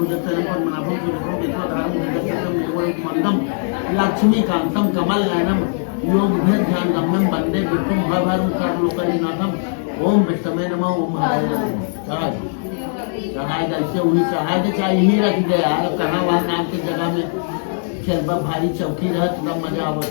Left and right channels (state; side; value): silent; right; 59 dB below the other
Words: पद्मनाभं सुरेशं केशवधारं भुजगशयनं मेघवर्णं मंदं लक्ष्मीकान्तं कमलनयनं योगभेदध्यानगम्यं वन्दे विष्णुं भवभयं सर्वलोकैकनाथं। ओम विष्णवे नमः ओम हराय नमः। चढ़ाएगा इससे उन्हीं चढ़ाए चाहिए ही रख दे यार, कहाँ वहाँ नाम की जगह में चलबा भारी चौकी रह तब मजा आवत